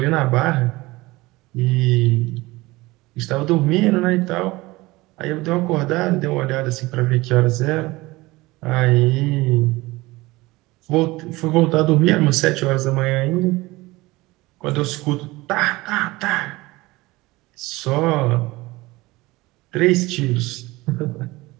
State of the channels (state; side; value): quieter; left; 20.7 dB